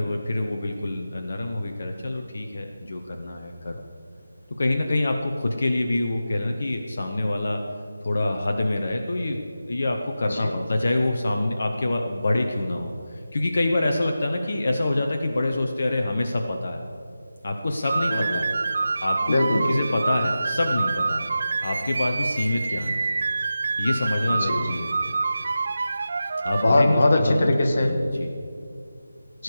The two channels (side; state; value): both; inverted; correlation -0.93